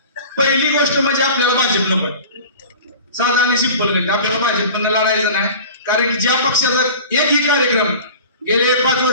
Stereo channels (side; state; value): both; inverted; correlation -0.39